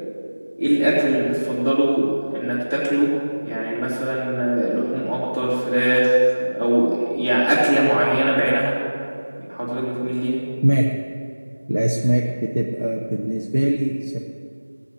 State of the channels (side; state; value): both; inverted; correlation -1.00